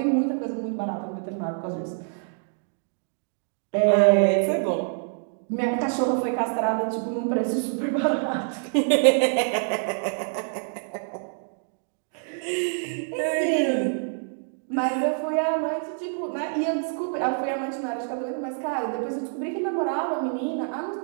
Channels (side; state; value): left; silent; digital silence